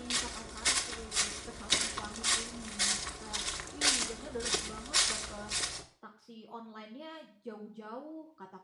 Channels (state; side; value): identical; both; correlation 1.00